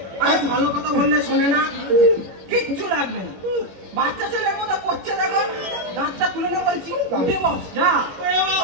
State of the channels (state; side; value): late; left; 21 ms